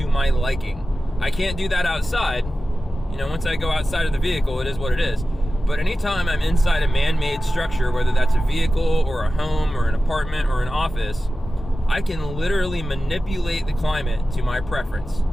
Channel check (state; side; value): normal; both; correlation 0.95